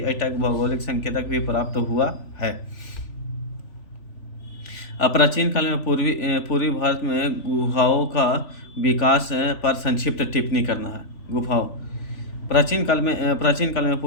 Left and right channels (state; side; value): late; right; 3.4 ms